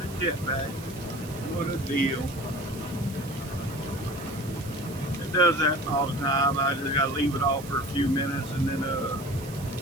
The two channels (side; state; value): right; noise; hiss, 16 dB below the sound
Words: jetpack. What a deal. It does that all the time. I just got to leave it off for a few minutes and then